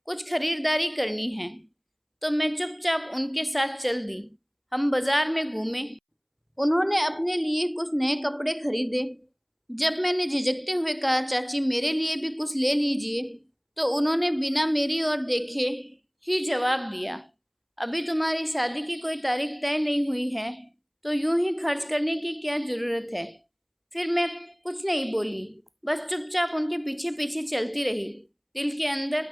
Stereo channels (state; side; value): identical; both; correlation 1.00